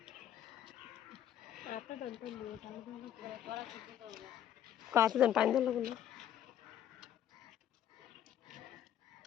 কাছে দেন পানি দেন না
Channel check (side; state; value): right; quieter; 10.5 dB